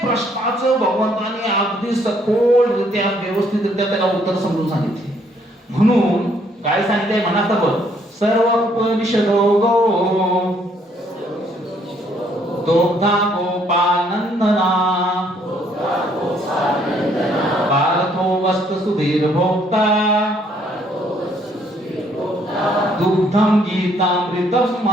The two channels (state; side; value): normal; both; correlation 0.67